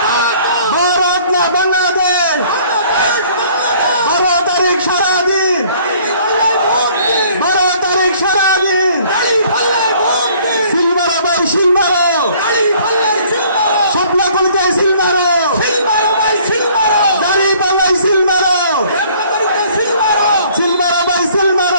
ভারত না বাংলাদেশ, 12 তারিখ সারাদিন, 12 তারিখ সারাদিন, সিলমারো ভাই সিলমারো, স্বপ্ন করতে সিলমারো, দাড়ি পাল্লাই সিলমারো, সিলমারো ভাই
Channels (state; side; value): inverted; both; correlation -0.57